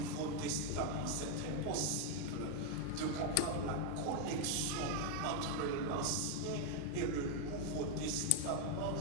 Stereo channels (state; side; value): different; both; correlation 0.00